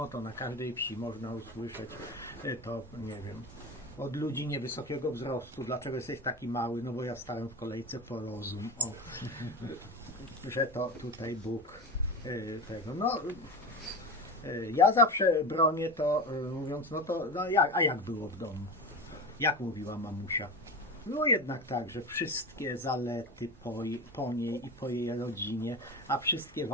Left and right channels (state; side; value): normal; both; correlation 0.25